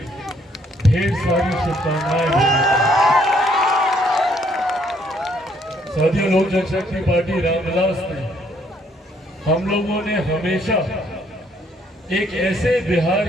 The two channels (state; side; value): normal; both; correlation 0.67